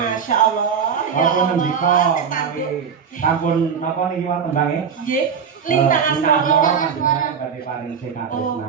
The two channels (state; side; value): quieter; left; 6.9 dB